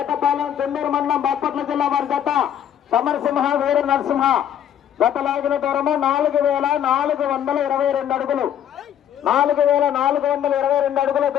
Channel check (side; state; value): right; quieter; 10.0 dB